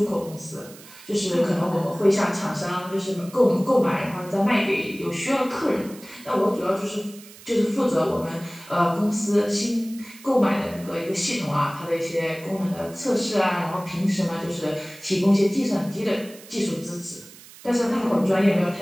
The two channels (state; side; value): noise; right; hiss, 20 dB below the sound